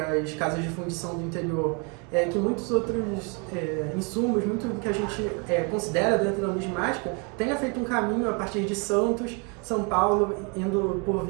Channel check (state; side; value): quieter; left; 33.1 dB